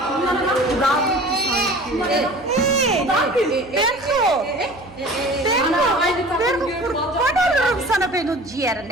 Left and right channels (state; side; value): noise; right; hum, 22 dB below the sound